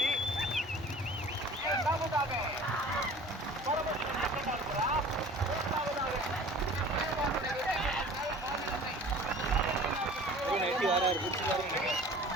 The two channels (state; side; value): normal; both; correlation 0.45